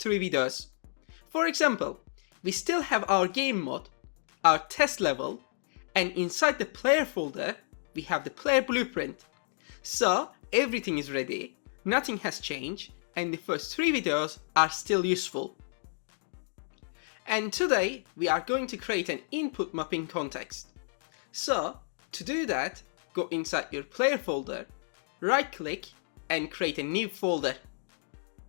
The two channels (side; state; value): right; silent; digital silence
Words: 3 videos. For example, we still have our game mode, our test level, and inside the player folder, we have the player blueprint. So everything is ready, nothing has changed, and the first 3 videos are still useful. And today, we are going to create an input mapping context. So to do that, go inside your player folder, right click, and create a new folder.